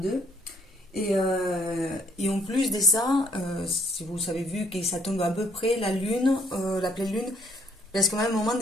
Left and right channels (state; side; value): normal; both; correlation 0.66